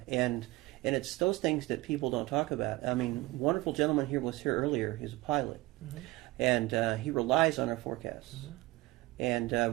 And it's those things that people don't talk about. I mean, wonderful gentleman here was here earlier. He's a pilot, and he relies on our forecasts.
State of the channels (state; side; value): quieter; left; 20.0 dB